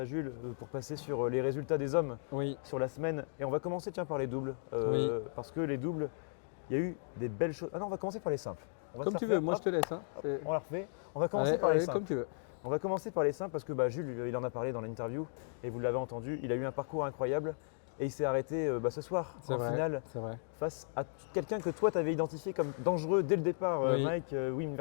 Jules pour passer sur les résultats des hommes sur la semaine. Et on va commencer par les doubles. Parce que les doubles, il y a eu des belles choses. Ah non, on va commencer par les simples. Comme tu veux, moi je te laisse. Hein. On la refait. On va commencer par les simples. Comme tu veux. On va commencer par les simples parce que Jules, il en a parlé dans l'interview et vous l'avez entendu, il a eu un parcours incroyable et il s'est arrêté ce soir en finale face à quelqu'un que toi tu avais identifié comme dangereux dès le départ, Mike Wim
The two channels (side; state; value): right; silent; digital silence